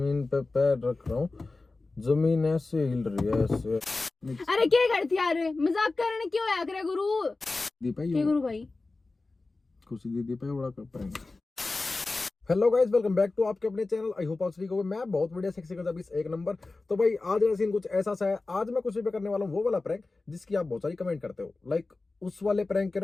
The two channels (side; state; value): right; quieter; 3.5 dB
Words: पे पैर रख रहा हूँ, जमीन ऐसे हिल रही है ऐसे। अरे क्या करती यार, मजाक करने क्यों आया करे गुरु। दीपा क्या गुरु भाई? खुशी दीदी पे बड़ा कर पाएंगे। Hello guys, welcome back to आपके अपने चैनल। आई होप आप सभी को मैं बहुत बढ़िया सेक्सी कर एक नंबर। तो भाई आज का सीन कुछ ऐसा सा है। आज मैं कुछ भी करने वाला हूँ वो वाला प्रैंक जिसकी आप बहुत सारी कमेंट करते हो। लाइक उस वाले प्रैंक के